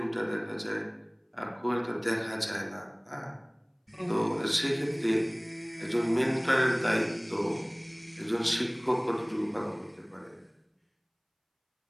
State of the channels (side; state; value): both; identical; correlation 1.00